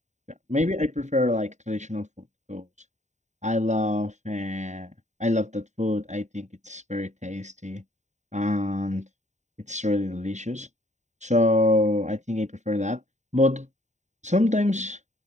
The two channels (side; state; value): left; late; 0.34 ms